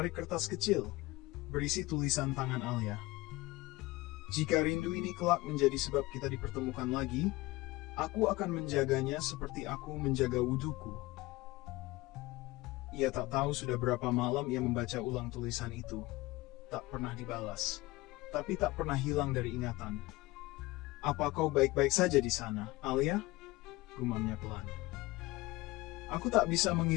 kertas kecil, berisi tulisan tangan Alia. Jika rindu ini kelak menjadi sebab kita dipertemukan lagi, aku akan menjaganya seperti aku menjaga wuduku. Ia tak tahu sudah berapa malam ia membaca ulang tulisan itu. Tak pernah dibalas, tapi tak pernah hilang dari ingatan. Apa kau baik-baik saja di sana, Alia? Gumamnya pelan. Aku tak bisa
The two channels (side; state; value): right; quieter; 20.5 dB